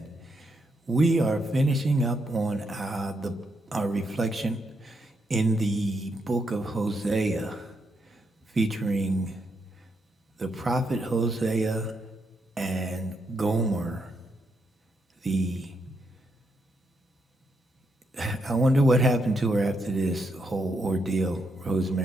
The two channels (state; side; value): normal; both; correlation 0.80